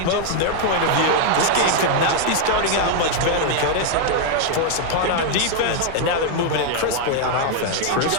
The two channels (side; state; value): both; different; correlation 0.00